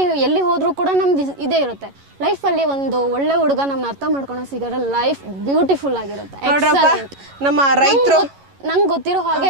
ಎಲ್ಲಿ ಹೋದ್ರೂ ಕೂಡ ನಮ್ದು ಇದೇ ಇರುತ್ತೆ. ಲೈಫಲ್ಲಿ ಒಂದು ಒಳ್ಳೆ ಹುಡುಗ ನಮ್ಮನ್ನ ಅರ್ಥ ಮಾಡ್ಕೊಂಡು ಸಿಗೋದ್ರೆ ಲೈಫ್ ಬ್ಯೂಟಿಫುಲ್ ಆಗಿರುತ್ತೆ. ನಮ್ಮ ರೈತರು ನಂಗೆ ಗೊತ್ತಿರೋ ಹಾಗೆ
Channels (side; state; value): left; late; 11 ms